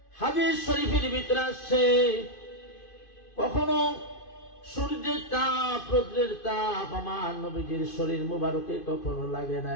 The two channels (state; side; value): late; right; 2.5 ms